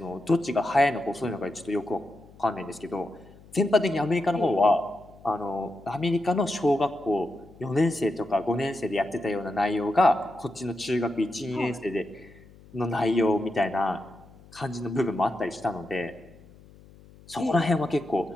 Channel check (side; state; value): left; noise; hum, 23 dB below the sound